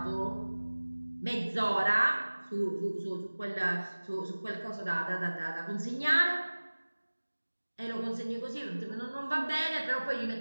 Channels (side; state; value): both; inverted; correlation -1.00